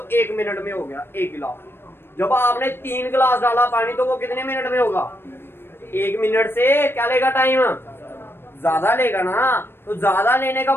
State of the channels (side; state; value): right; late; 0.11 ms